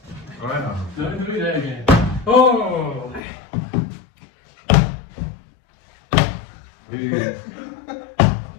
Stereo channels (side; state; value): right; drops out; at 3.2 s